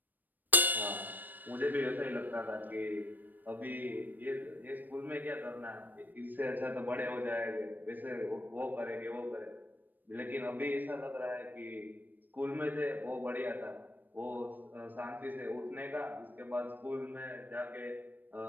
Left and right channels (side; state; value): left; late; 0.089 ms